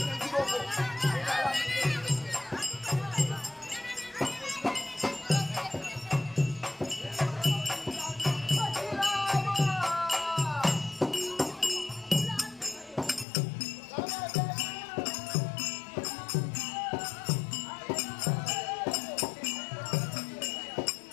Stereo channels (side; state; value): right; drops out; at 13.2 s